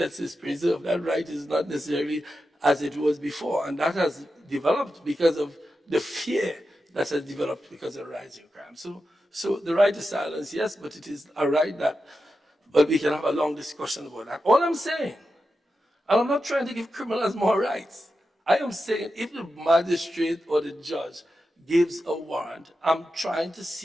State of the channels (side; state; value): both; normal; correlation 0.90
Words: is preserved, that right is not necessarily as it was before. And that has developed because of the fear that has developed because of rising crime. So the right to silence, yes, but it is a right that, but we can have a long discussion about that. All I'm saying, and I'm not trying to give criminals more rights. I am saying if the magistrate or the judge gives a warrant, I'm trying to